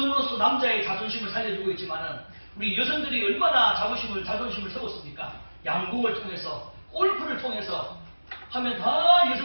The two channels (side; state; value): both; inverted; correlation -1.00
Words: 남자의 자존심을 살려주고 있지만은 우리 여성들이 얼마나 자존심을 세웠습니까? 양궁을 통해서, 골프를 통해서 하면 다